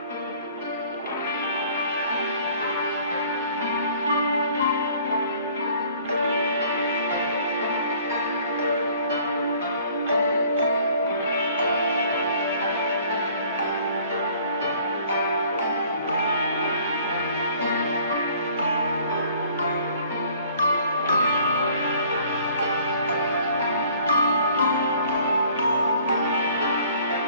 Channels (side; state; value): both; inverted; correlation -0.54